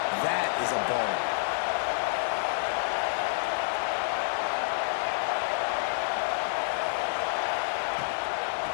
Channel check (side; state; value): right; silent; 59 dB below the other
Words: That is a ball.